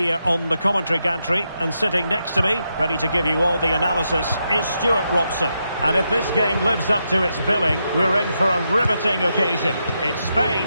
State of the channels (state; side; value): inverted; both; correlation -0.83